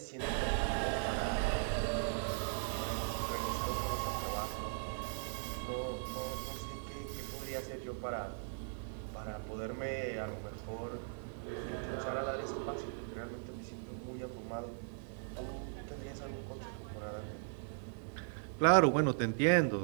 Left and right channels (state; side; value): silent; left; digital silence